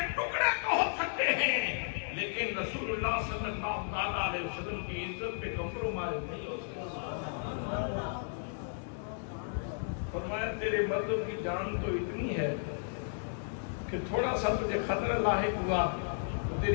ٹکڑے تو ہو سکتے ہیں، لیکن رسول اللہ صلی اللہ علیہ وسلم کی عزت پہ کمپرومائز نہیں ہو سکتا۔ فرمایا تیرے مردوں کی جان تو اتنی ہے کہ تھوڑا سا تجھے خطرہ لاحق ہوا تو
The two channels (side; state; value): right; silent; digital silence